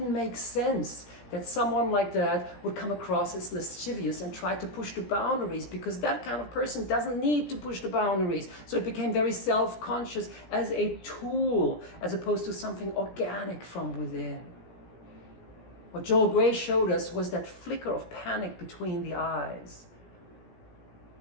make sense that someone like that would come across as lascivious and try to push the boundaries, because that kind of person doesn't need to push the boundaries. So it became very self-conscious as a tool, as opposed to something organic from within. What Joel Grey showed us was that flicker of panic between the eyes.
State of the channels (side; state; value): right; late; 17 ms